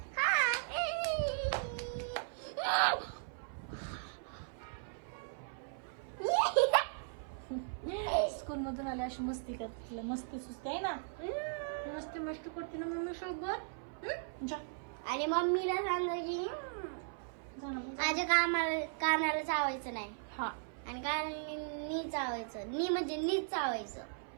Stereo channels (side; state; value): left; silent; 53 dB below the other